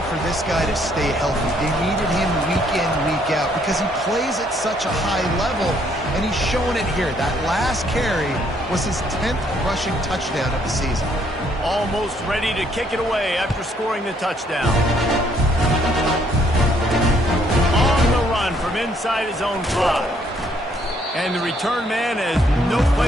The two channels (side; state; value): both; normal; correlation 0.68